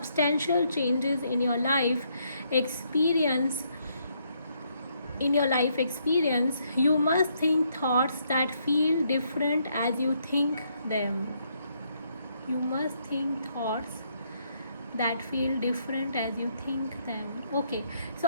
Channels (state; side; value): inverted; both; correlation -0.74